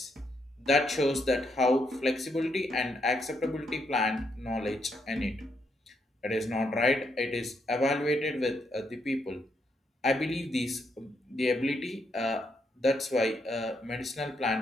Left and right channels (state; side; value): normal; both; correlation 0.77